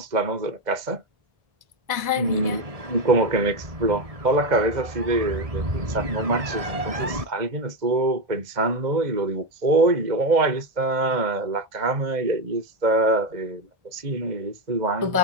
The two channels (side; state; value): left; late; 2.0 ms